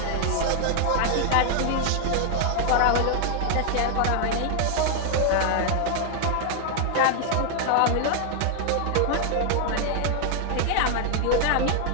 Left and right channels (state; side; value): different; both; correlation 0.00